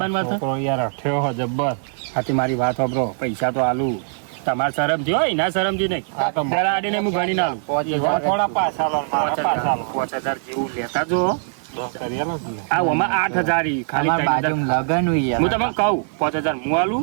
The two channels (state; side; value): silent; left; digital silence